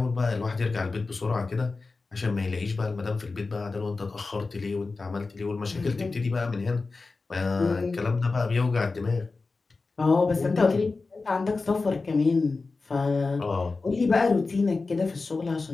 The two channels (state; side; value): quieter; right; 3.9 dB